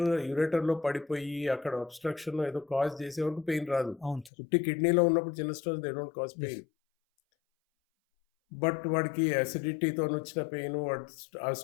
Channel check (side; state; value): right; drops out; at 4.3 s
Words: యూరేటర్లో పడిపోయి అక్కడ అబ్స్ట్రక్షన్ ఏదో కాజ్ చేసే వరకు పెయిన్ రాదు. అవును సార్. పుట్టి కిడ్నీలో ఉన్నప్పుడు చిన్న stones they don't cause pain. But వాడికి యాసిడిటీతో వచ్చిన పెయిన్, ఆ